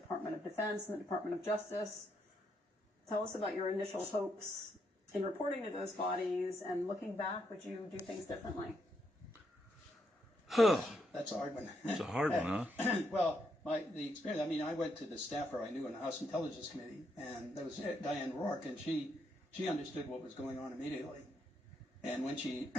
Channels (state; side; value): normal; both; correlation 0.78